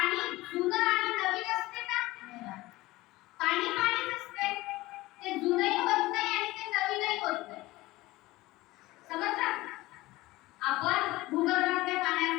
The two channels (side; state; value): right; quieter; 19.0 dB